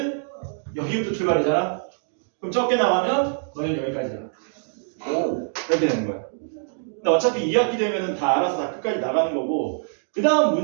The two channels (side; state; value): left; silent; digital silence